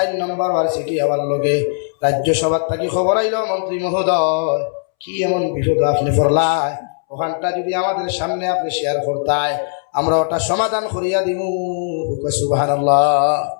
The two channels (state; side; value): silent; right; 67 dB below the other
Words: নম্বর বার চিঠি আবার লগে রাজ্যসভার থাকি খবর আইল, মন্ত্রী মহোদয় কি এমন বিপদ আপনি পড়লাই, ওখানটা যদি আমাদের সামনে আপনি শেয়ার করতাই, আমরা ওটা সমাধান করিয়া দিমু। সুবহানাল্লাহ।